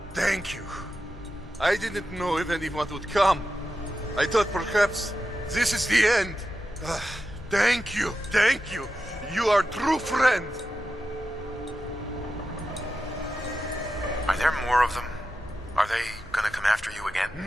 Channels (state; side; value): normal; both; correlation 0.90